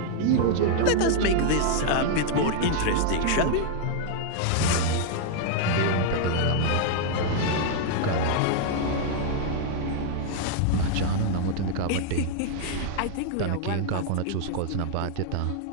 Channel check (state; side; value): different; both; correlation 0.00